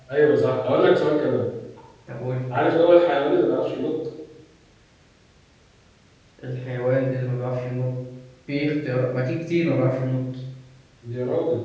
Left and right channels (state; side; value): identical; both; correlation 1.00